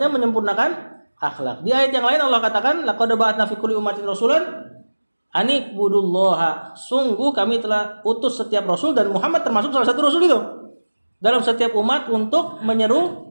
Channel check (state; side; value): inverted; both; correlation -1.00